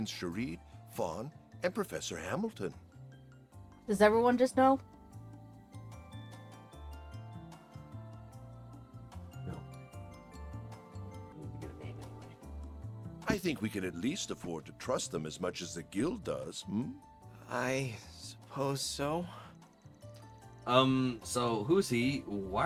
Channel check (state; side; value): identical; both; correlation 1.00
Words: Sharid, Fawn, and Professor Hamilton. Does everyone just know? No. I need to get a name anyway. I think we can at least afford to trust them as much as the guild does, hmm? I suppose so. So who's he? Why